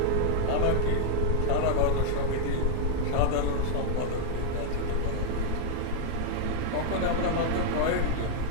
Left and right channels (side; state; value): both; different; correlation 0.00